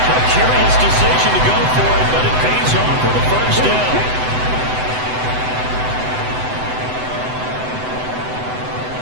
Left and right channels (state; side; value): late; left; 7.9 ms